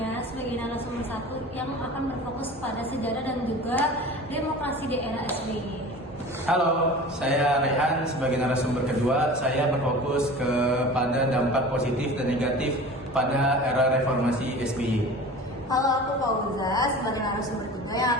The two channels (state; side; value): normal; both; correlation 0.38